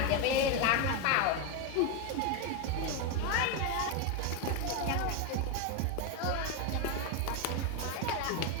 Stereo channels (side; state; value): both; different; correlation 0.02